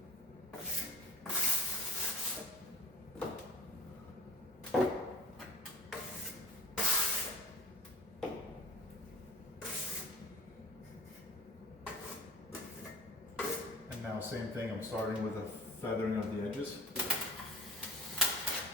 And now same thing, I'm starting with a feathering of the edges.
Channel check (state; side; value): normal; both; correlation 0.40